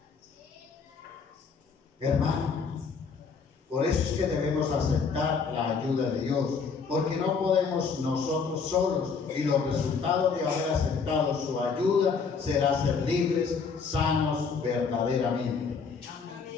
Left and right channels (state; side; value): quieter; right; 5.5 dB